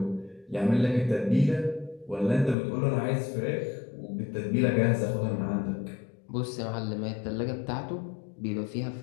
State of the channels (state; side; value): drops out; right; at 2.6 s